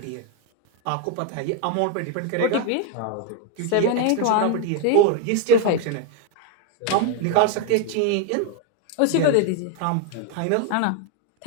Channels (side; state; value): both; different; correlation 0.01